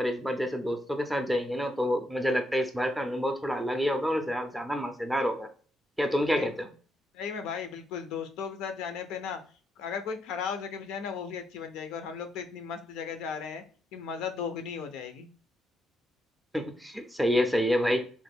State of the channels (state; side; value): normal; both; correlation 0.80